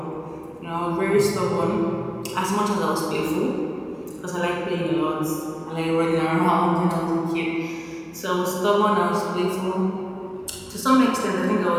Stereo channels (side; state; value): both; identical; correlation 1.00